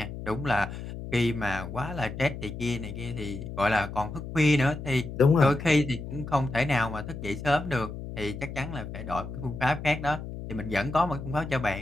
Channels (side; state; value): left; noise; hum, 9 dB below the sound